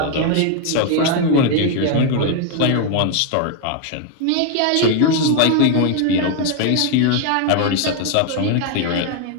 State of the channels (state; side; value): different; both; correlation 0.00